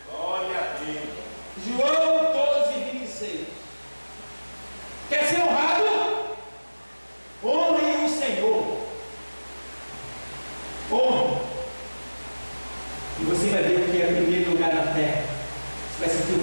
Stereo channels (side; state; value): both; inverted; correlation -1.00